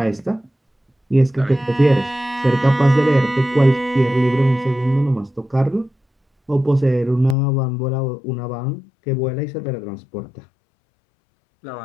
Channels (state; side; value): drops out; right; at 7.4 s